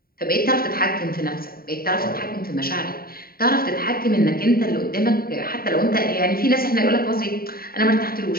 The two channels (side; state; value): right; late; 0.43 ms